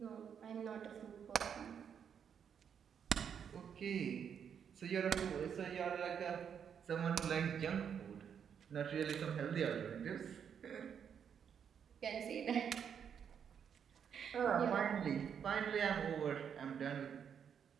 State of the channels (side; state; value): left; quieter; 7.8 dB